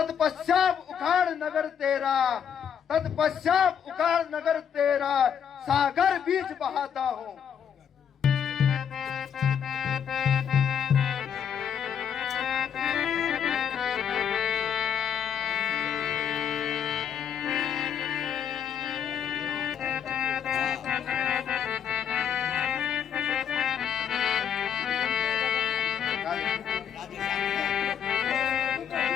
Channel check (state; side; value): quieter; right; 8.3 dB